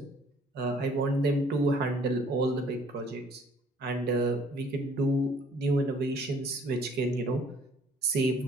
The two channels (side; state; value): both; normal; correlation 0.58